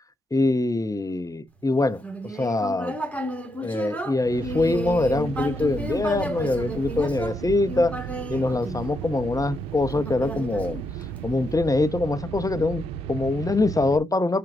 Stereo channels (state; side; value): normal; both; correlation 0.81